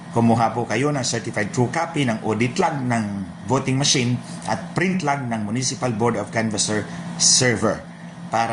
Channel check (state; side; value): identical; both; correlation 1.00